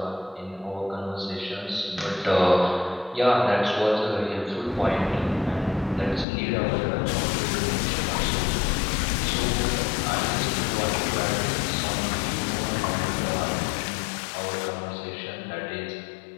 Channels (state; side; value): drops out; right; at 6.2 s